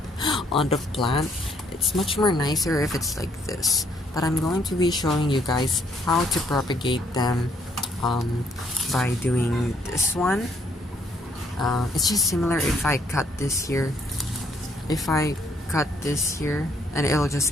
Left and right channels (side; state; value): both; normal; correlation 0.68